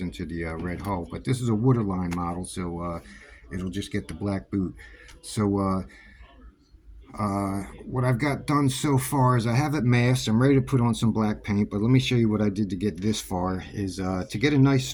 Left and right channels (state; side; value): identical; both; correlation 1.00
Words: into the red hull. But this is a waterline model, so it'll just get the black boot. So what I've got done so far is I have it masked. I'm ready to put on some black paint, but let me show you what I did to get this far. Is to get a nice